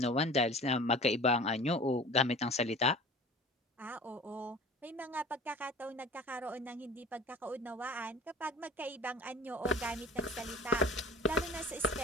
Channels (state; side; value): normal; both; correlation 0.41